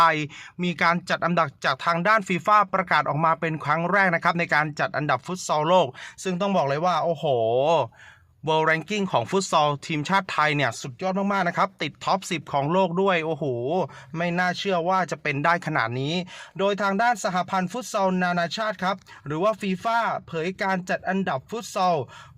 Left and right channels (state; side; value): identical; both; correlation 1.00